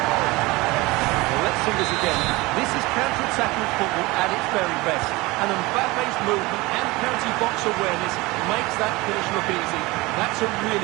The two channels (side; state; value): left; quieter; 22.1 dB